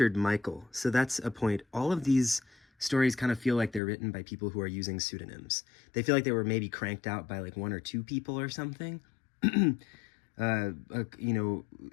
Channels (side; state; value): right; drops out; at 3.8 s